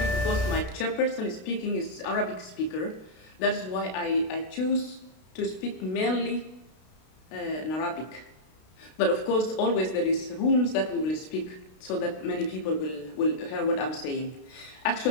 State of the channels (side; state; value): right; late; 32 ms